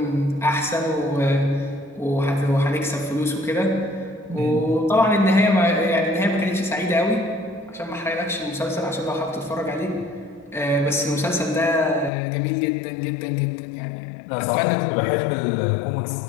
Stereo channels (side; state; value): right; drops out; at 12.1 s